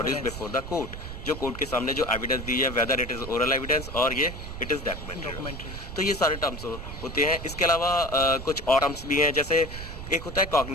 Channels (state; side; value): noise; right; rumble, 9 dB below the sound